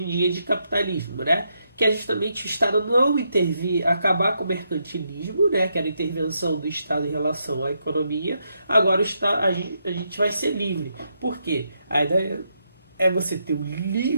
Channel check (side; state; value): both; inverted; correlation -0.80